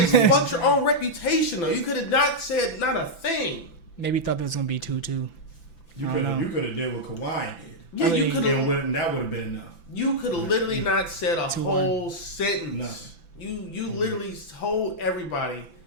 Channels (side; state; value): right; late; 5.9 ms